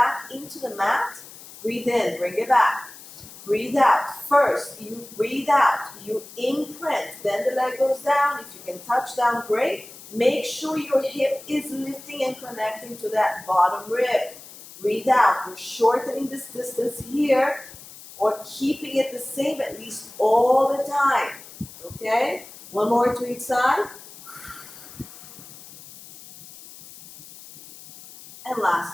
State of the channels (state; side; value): noise; left; hiss, 18 dB below the sound